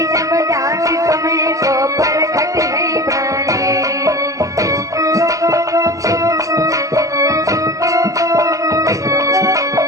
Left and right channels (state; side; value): late; left; 0.16 ms